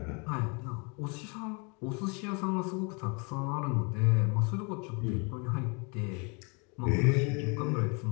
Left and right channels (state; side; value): quieter; right; 32.9 dB